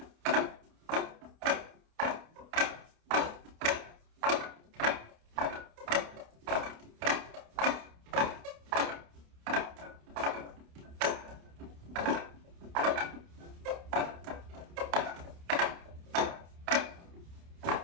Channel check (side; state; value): left; late; 29 ms